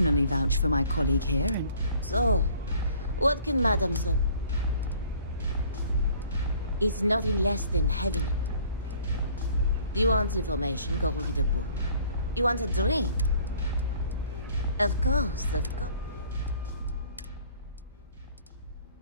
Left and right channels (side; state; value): both; inverted; correlation -0.55